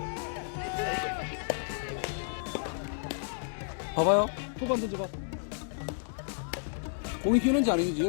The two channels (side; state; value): right; silent; digital silence